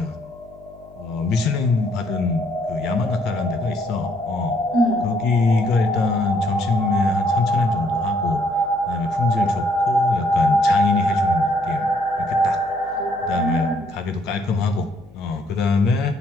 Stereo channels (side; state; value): left; noise; hum, 24 dB below the sound